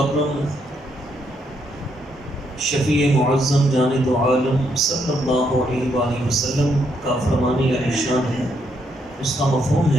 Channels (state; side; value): normal; both; correlation 0.75